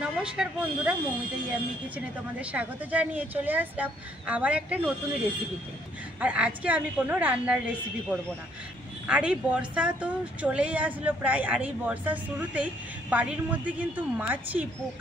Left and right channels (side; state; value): both; normal; correlation 0.66